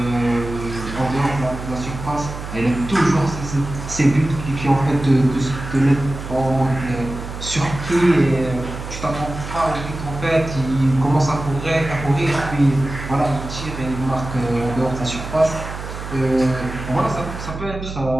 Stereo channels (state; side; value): noise; right; hum, 9 dB below the sound